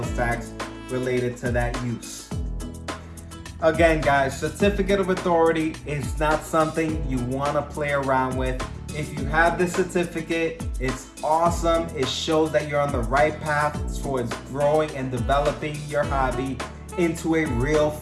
tax related to that use. Again, guys, certificate of authority is not something you want to play around with. If you have the certificate, it's awesome. It shows that you're on the right path towards growing and developing your hobby into a real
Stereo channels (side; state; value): both; identical; correlation 1.00